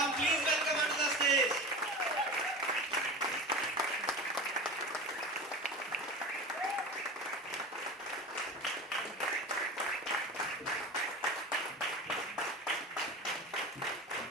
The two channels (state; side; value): normal; both; correlation 0.31